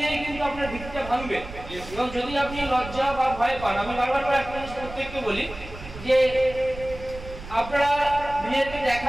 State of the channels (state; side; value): noise; right; rumble, 13 dB below the sound